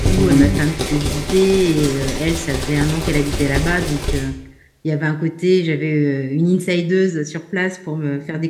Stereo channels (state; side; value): identical; both; correlation 1.00